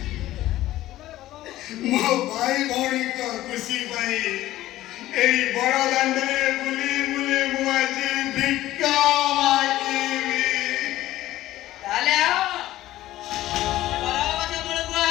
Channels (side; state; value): right; quieter; 15.1 dB